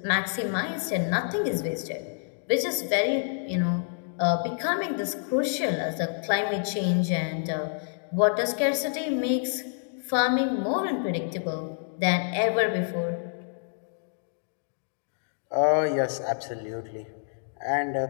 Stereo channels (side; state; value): right; silent; digital silence